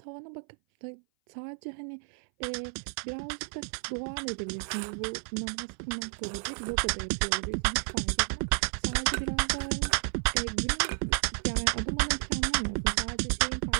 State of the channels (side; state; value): left; silent; 57 dB below the other